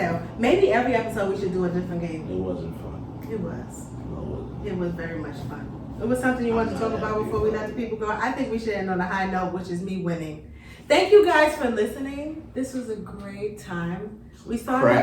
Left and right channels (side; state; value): both; identical; correlation 1.00